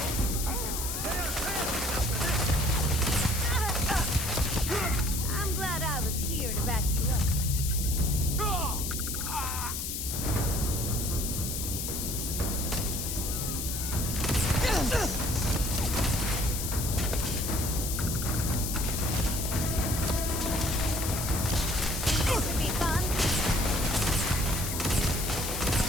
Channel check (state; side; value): noise; left; hiss, 3 dB below the sound